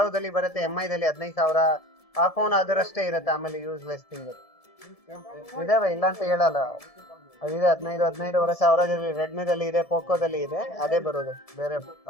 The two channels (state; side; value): late; right; 1.7 ms